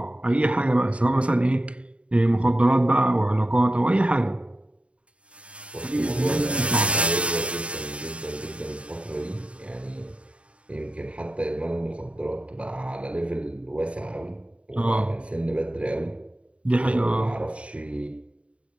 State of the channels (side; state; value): left; late; 0.061 ms